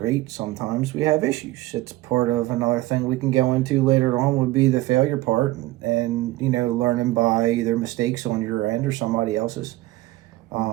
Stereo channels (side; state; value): left; quieter; 17.9 dB